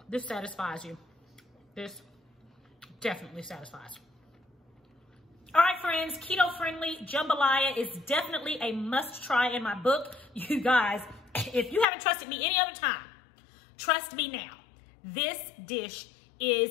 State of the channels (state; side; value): drops out; right; at 11.9 s